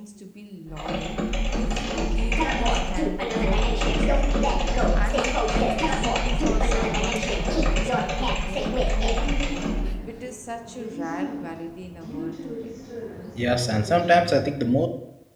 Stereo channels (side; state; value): both; identical; correlation 1.00